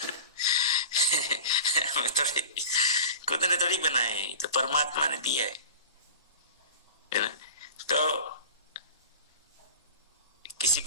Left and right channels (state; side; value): inverted; both; correlation -0.35